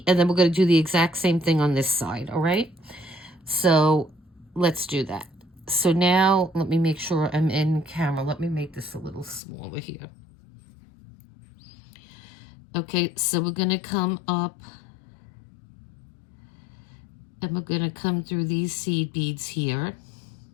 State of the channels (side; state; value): right; drops out; at 9.4 s